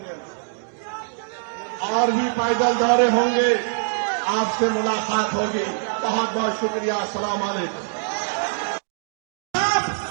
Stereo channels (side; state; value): left; silent; digital silence